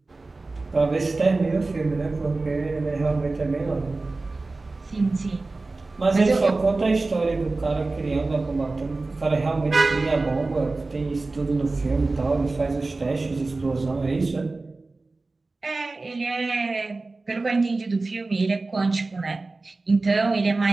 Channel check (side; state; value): left; quieter; 3.4 dB